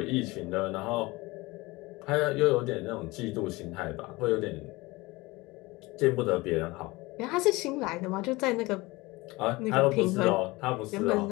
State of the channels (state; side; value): quieter; right; 22.2 dB